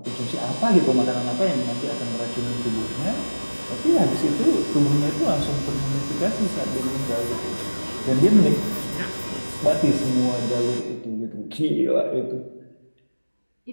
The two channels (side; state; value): both; inverted; correlation -1.00